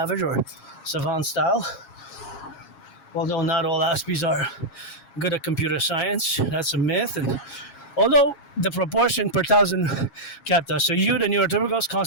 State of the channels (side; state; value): right; late; 7.3 ms